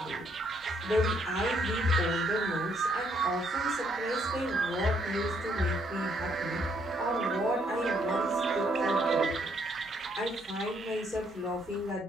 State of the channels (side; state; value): both; normal; correlation 0.70